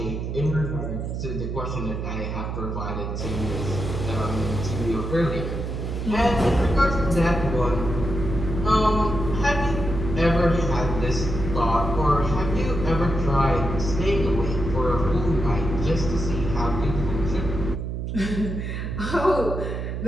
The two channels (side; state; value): right; noise; hum, 4 dB below the sound